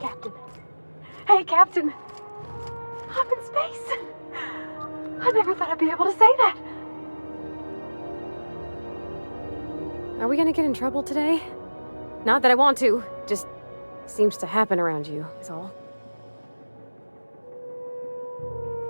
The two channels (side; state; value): both; inverted; correlation -1.00